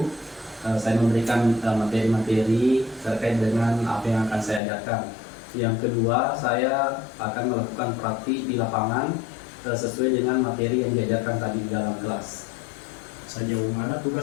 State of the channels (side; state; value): right; drops out; at 4.6 s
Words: Saya memberikan materi-materi terkait dengan apa yang akan saya ajarkan. Yang kedua, saya akan melakukan praktik di lapangan sesuai dengan materi yang diajarkan tadi di dalam kelas. Sejauh mana